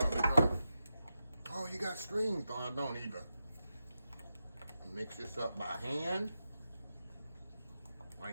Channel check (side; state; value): both; inverted; correlation -0.89